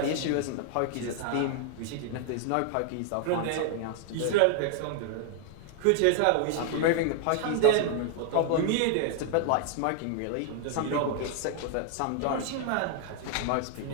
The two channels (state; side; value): different; both; correlation 0.00